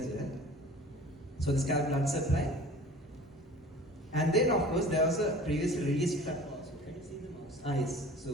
well. So the scalp blood supply. And then of course there was a previously released flap also. Can you see the mouse? Yes.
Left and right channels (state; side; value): normal; both; correlation 0.43